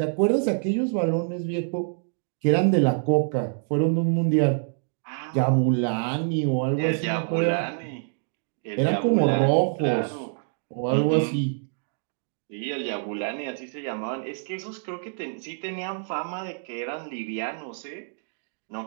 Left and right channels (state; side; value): silent; left; digital silence